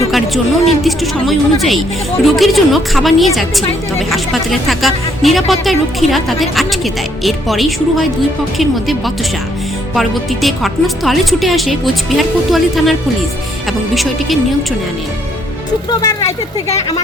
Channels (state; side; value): normal; both; correlation 0.69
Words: ঢোকার জন্য নির্দিষ্ট সময় অনুযায়ী রোগীর জন্য খাবার নিয়ে যাচ্ছিল, তবে হাসপাতালে থাকা নিরাপত্তা রক্ষীরা তাদের আটকে দেয়। এরপরেই শুরু হয় দুই পক্ষের মধ্যে বচসা। পরবর্তীতে ঘটনাস্থলে ছুটে আসে কোচবিহার কোতোয়ালি থানার পুলিশ এবং বিষয়টিকে নিয়ন্ত্রণে আনেন। শুক্রবার রাতের থেকে